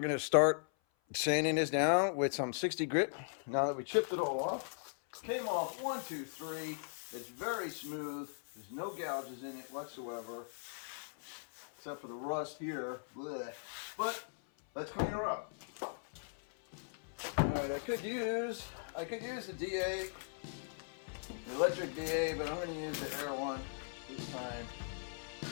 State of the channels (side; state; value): right; silent; 52 dB below the other